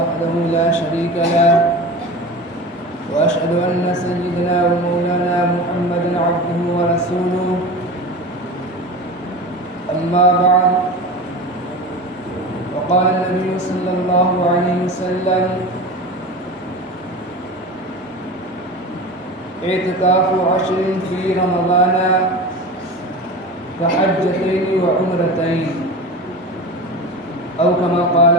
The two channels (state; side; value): normal; both; correlation 0.31